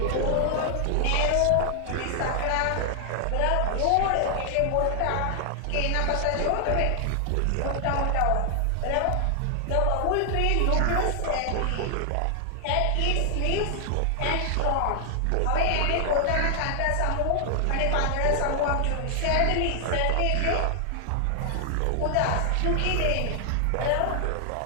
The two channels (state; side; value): different; both; correlation 0.00